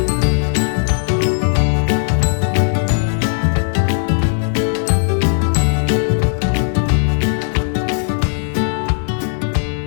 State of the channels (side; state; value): right; silent; 68 dB below the other